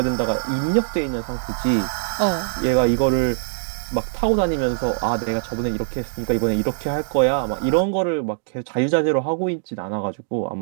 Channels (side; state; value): left; silent; digital silence